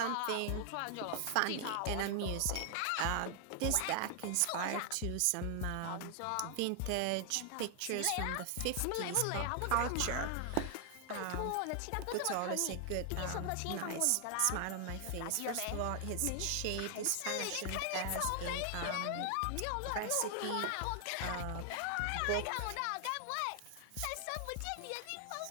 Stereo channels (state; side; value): different; both; correlation 0.00